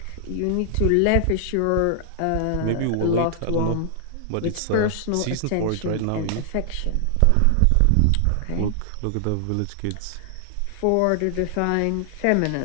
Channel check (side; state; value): both; different; correlation 0.00